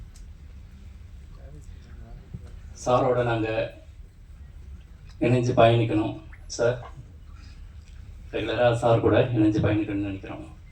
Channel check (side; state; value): both; identical; correlation 1.00